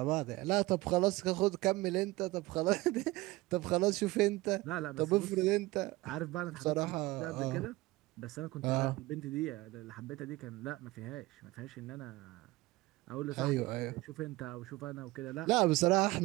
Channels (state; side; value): quieter; left; 20.1 dB